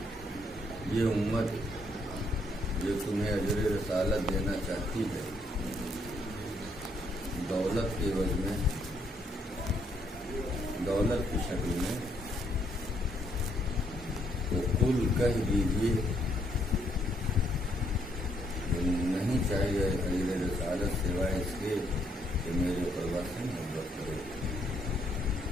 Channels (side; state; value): both; normal; correlation 0.71